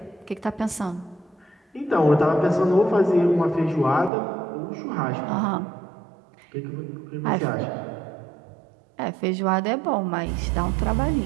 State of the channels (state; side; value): drops out; left; at 4.1 s